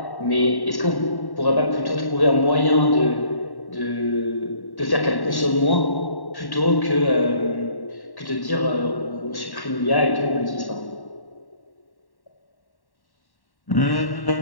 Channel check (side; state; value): right; late; 1.1 ms